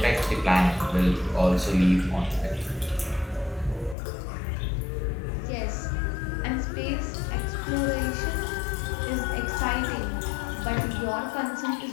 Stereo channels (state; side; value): drops out; right; at 4.0 s